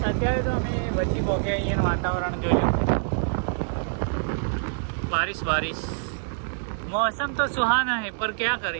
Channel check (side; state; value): left; silent; digital silence